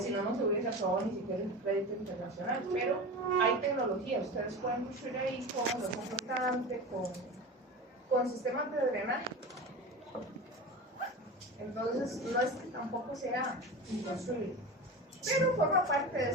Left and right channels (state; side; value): normal; both; correlation 0.28